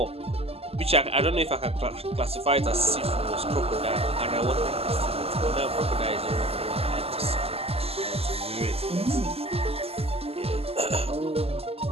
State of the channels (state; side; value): late; left; 0.29 ms